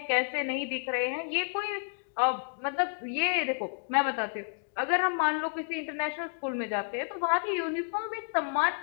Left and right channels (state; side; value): silent; right; digital silence